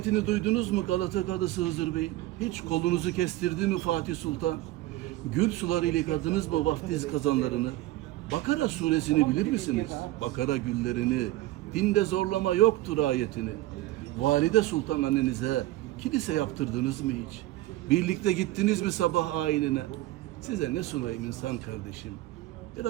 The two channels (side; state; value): left; quieter; 16.5 dB